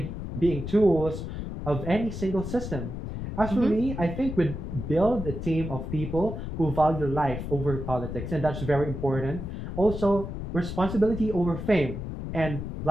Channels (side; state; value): left; noise; rumble, 6 dB below the sound